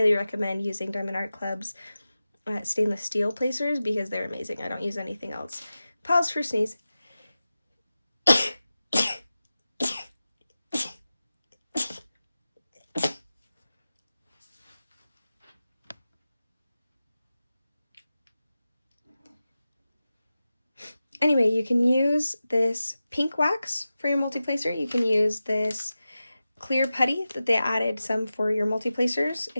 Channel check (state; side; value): inverted; both; correlation -0.94